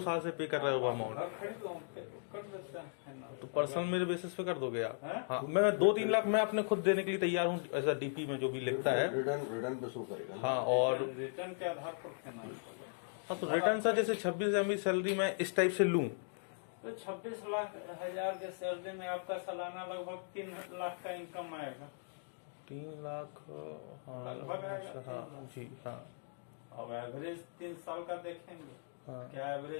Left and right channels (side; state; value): right; silent; digital silence